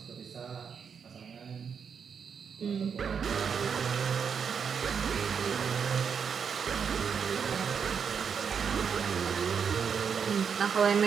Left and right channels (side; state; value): left; quieter; 6.7 dB